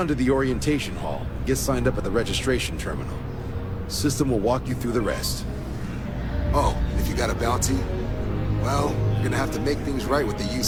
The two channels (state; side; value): identical; both; correlation 1.00